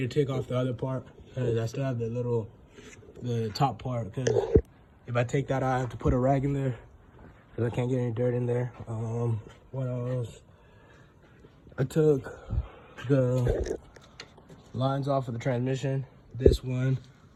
take off the other part because I still have the top part, because if I take that out, I have to put a rag in there because I can't get any dirt in there. What else? I took the lines off of the transmission. This one,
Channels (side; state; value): both; identical; correlation 1.00